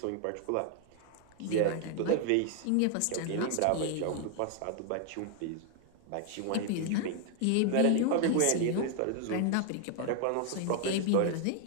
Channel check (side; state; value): both; different; correlation 0.00